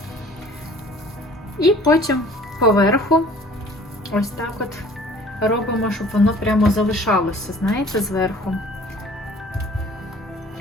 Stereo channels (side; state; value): both; normal; correlation 0.51